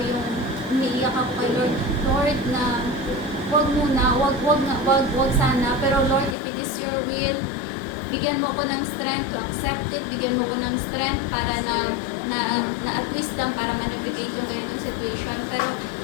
yung umiiyak ako kay Lord. Lord, na wag sana, pero Lord, if it is your will, bigyan mo ko ng strength to accept it, bigyan mo ko ng strength para na wisdom para manipulate yung ganitong situation.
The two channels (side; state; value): right; drops out; at 6.4 s